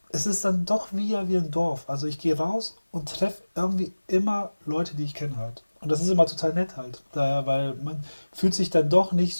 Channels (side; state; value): both; inverted; correlation -1.00